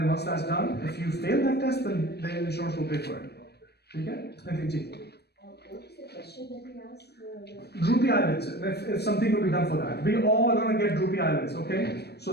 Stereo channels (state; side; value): late; right; 0.47 ms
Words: once that's done, if you fail that test, then the insurance will pay for it. Okay? Thank you. What is the question that we asked? Droopy eyelids, if something will be done for that. We all are going to get droopy eyelids, okay? So